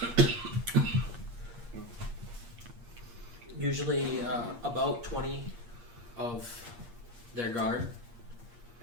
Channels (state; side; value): late; left; 8.5 ms